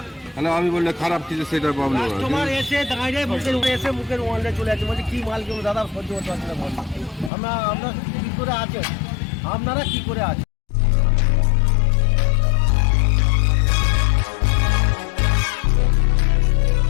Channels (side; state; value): right; drops out; at 7.3 s